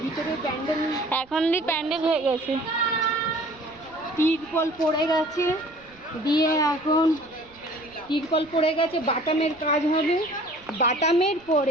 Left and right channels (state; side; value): noise; right; rumble, 27 dB below the sound